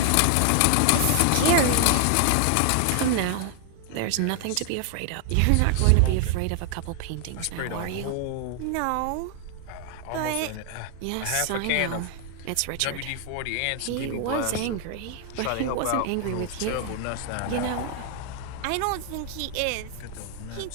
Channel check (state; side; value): different; both; correlation 0.00